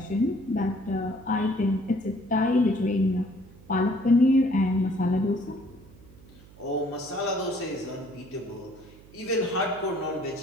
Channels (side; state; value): right; noise; hum, 22 dB below the sound